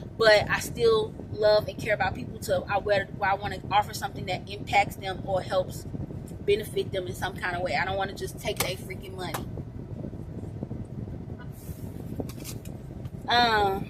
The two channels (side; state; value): both; identical; correlation 1.00